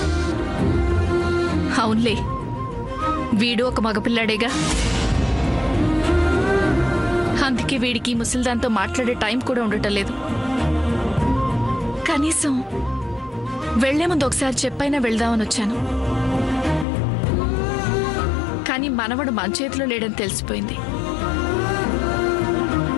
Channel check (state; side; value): drops out; right; at 16.9 s